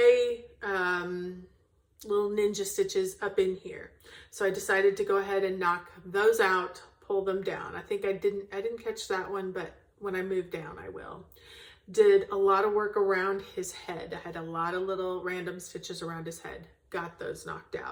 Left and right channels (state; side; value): identical; both; correlation 1.00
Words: little ninja stitches up in here. So I decided to go ahead and knock those out, pull them down. I think I didn't catch that one, but when I move down, I will. Did a lot of work around his head. I had a lot of little random stitches around his head. Got those knocked